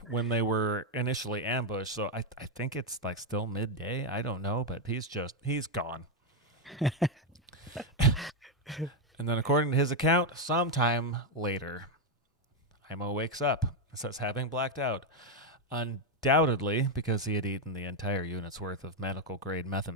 when they were initially ambushed, so I think it's like still midday. I don't know, but he's gone. And then according to his account, sometime later, Aimo wakes up and says having blacked out. Undoubtedly because he had eaten the entire unit's worth of medical grade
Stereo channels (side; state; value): both; normal; correlation 0.04